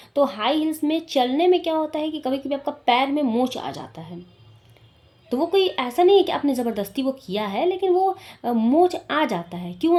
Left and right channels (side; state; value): both; identical; correlation 1.00